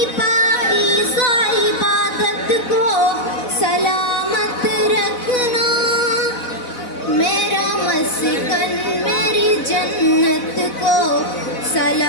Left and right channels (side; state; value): right; late; 4.0 ms